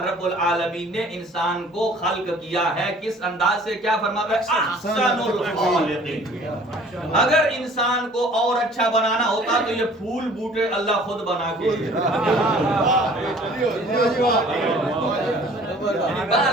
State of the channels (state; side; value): normal; both; correlation 0.51